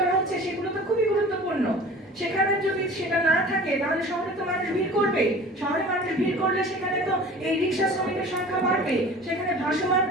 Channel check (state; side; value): normal; both; correlation 0.42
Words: হচ্ছে সেগুলো তো খুবই গুরুত্বপূর্ণ। সেখানে যদি সেটা না থাকে, তাহলে শহরে তো মানুষ ভিড় করবে। শহরে মানুষ ভিড় করলে সেখানে তো এই রিক্সা শ্রমিকের সংখ্যা বাড়বে। সেখানে ভাসমান